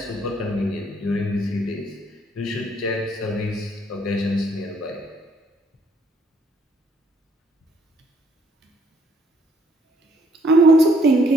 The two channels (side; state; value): both; normal; correlation 0.66